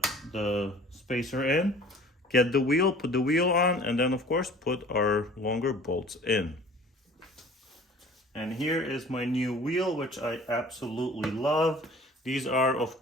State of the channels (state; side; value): normal; both; correlation 0.47